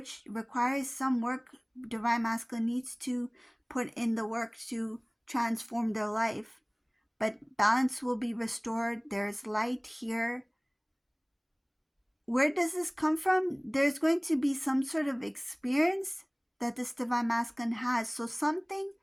requires some work. Divine masculine needs to put in the work to transform their life, but balance will be restored. There's light here. Where does this come from? There's going to be some sort of experience that this divine masculine has. So something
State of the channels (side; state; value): both; identical; correlation 1.00